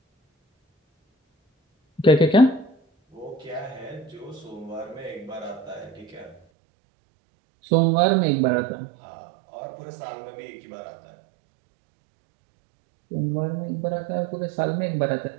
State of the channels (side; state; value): left; drops out; at 6.4 s